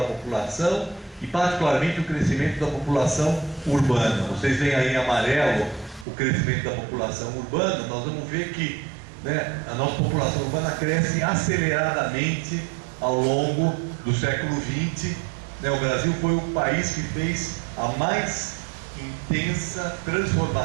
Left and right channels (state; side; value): drops out; left; at 6.1 s